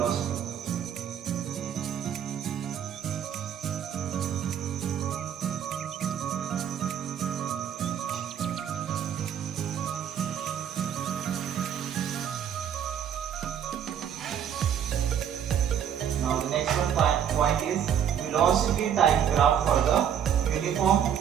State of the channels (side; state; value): left; quieter; 8.9 dB